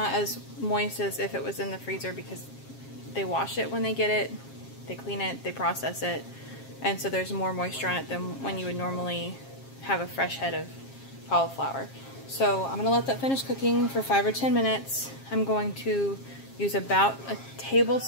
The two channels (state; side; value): late; right; 7.4 ms